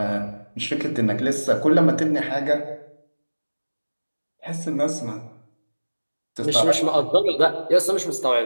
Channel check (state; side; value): inverted; both; correlation -1.00